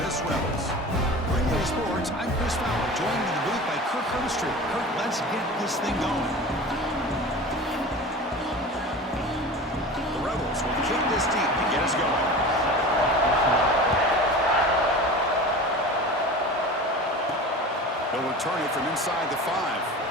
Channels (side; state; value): both; normal; correlation 0.35